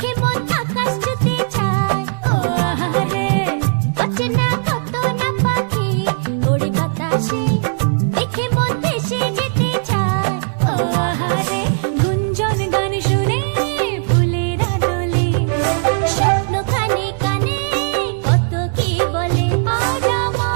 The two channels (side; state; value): left; silent; digital silence